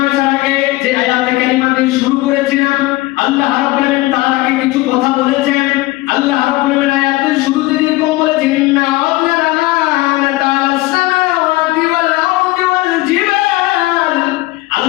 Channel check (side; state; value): right; quieter; 19.7 dB